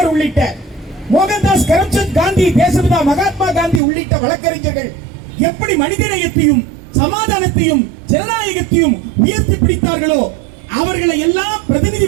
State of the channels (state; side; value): drops out; left; at 3.8 s